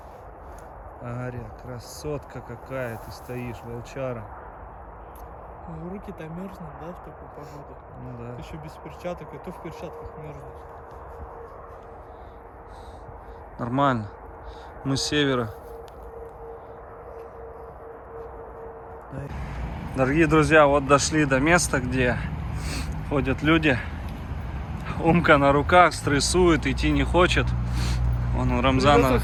Ария, красотка какая, ты стоишь, волчара. Руки-то мерзнут, да, в такую погоду? Ну да. Ты еще без перчаток, и то в перчатках мерзнешь. Нормально. Мы с севера. Дорогие друзья, вот дошли до места, где ходят люди. Умка на руках, стрессует, идти не хочет. Он Рамзана...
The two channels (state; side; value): identical; both; correlation 1.00